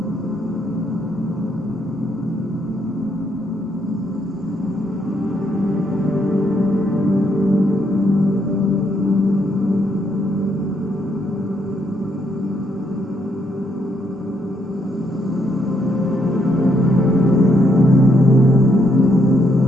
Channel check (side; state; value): both; normal; correlation 0.75